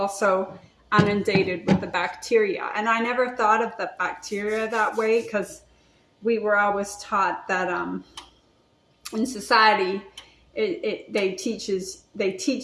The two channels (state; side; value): identical; both; correlation 1.00